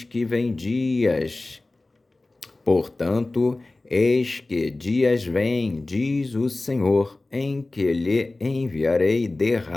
que dias vêm, diz o Senhor, em que lhe enviarei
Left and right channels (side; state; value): right; quieter; 3.0 dB